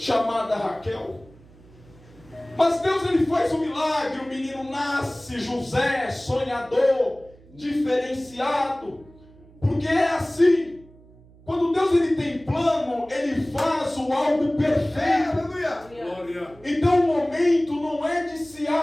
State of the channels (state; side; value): noise; right; hum, 25 dB below the sound